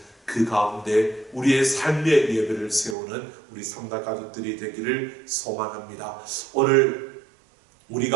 그 가운데 우리의 삶의 예배를 세우는 우리 삼락가족들이 되기를 소망합니다. 오늘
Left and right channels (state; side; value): drops out; left; at 3.0 s